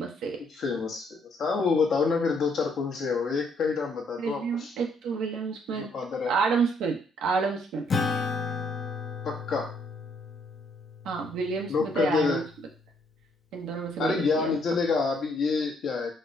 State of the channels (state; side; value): normal; both; correlation 0.69